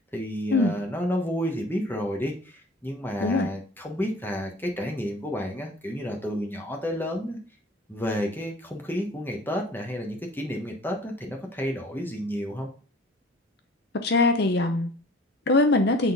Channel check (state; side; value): normal; both; correlation 0.48